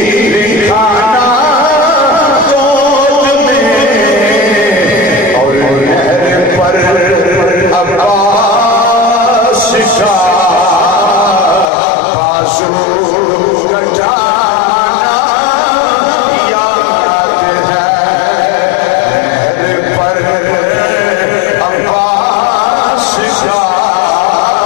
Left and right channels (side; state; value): right; drops out; at 11.7 s